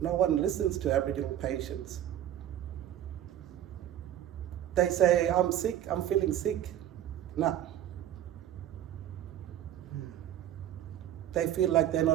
No one listens to Aboriginal patients. They say, I'm sick, I'm feeling sick. No. They feel like they're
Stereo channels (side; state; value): left; quieter; 11.5 dB